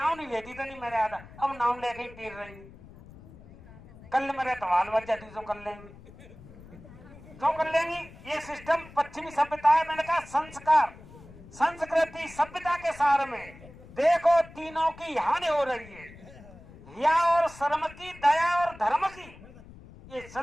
नहीं लेती तो नहीं मेरे आधा, अब नाम लेके ही पीर रही। कल मेरे तवाल बच जाती तो कर लेंगे, क्यों कर लेंगी? ये सिस्टम पश्चिमी सभ्यता है। मैंने कहा संस्कार संस्कृति सभ्यता के सार में देखो तीनों की हानि हो रही है, या और शर्म की, दया और धर्म की, ये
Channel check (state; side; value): noise; left; rumble, 19 dB below the sound